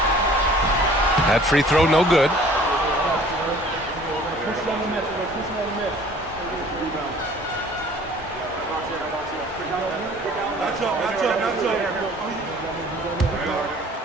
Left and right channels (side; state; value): both; normal; correlation 0.51